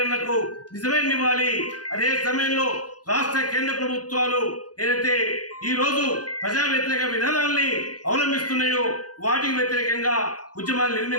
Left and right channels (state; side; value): late; right; 0.69 ms